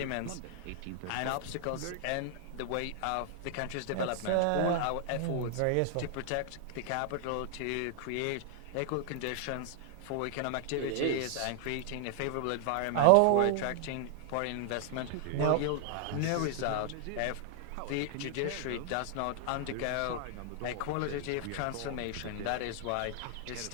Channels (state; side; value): different; both; correlation -0.01